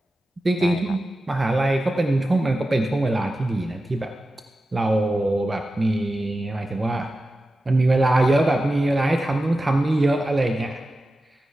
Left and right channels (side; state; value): both; normal; correlation 0.93